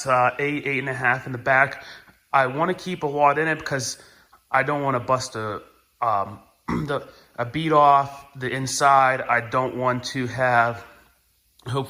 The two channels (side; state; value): both; identical; correlation 1.00